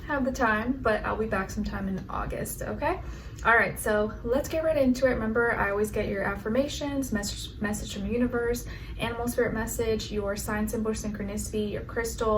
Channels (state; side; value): identical; both; correlation 1.00